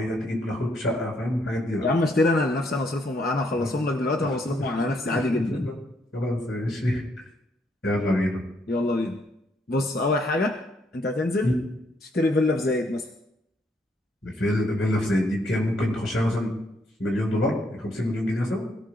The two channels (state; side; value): normal; both; correlation 0.72